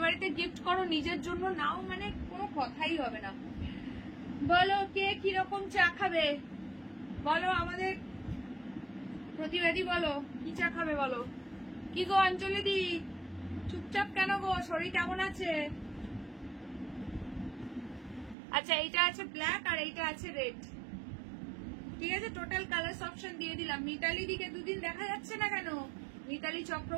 বাড়িতে গিফট করো, নিজের জন্য নাও, মানে কোনো কথাই হবে না। বলো কে কিরকম চা খাবে, বলো আমাদের প্রতিবাদী, বলো কি চা খাবে বলো। কি গো অঞ্জলি দি, চুপচাপ কেন গো, শরীর কেমন আছে? আচ্ছা, এইটা আছে ব্ল্যাক আর এইটা আছে রেড, ঠিক আছে। টোটাল কালার অপশন দিয়ে দিলাম। মিতালি দিকে দুদিন দেখা যাচ্ছে না কেন? মিতালি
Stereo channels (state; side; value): drops out; left; at 18.4 s